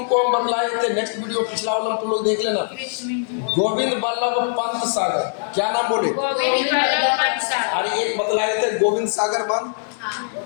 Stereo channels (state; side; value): silent; right; 65 dB below the other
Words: हम बतलाए थे। नेक्स्ट वीडियो पिछला वाला तुम लोग देख लेना। गोविंद बल्लभ पंत सागर, क्या नाम बोले? अरे एक बतलाए थे गोविंद सागर बांध।